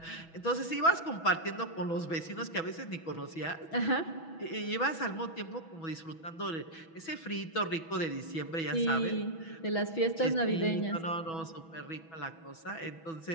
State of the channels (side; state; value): right; late; 6.1 ms